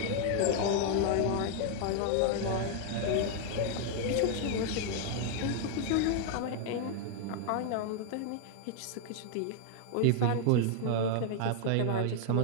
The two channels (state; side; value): different; both; correlation 0.00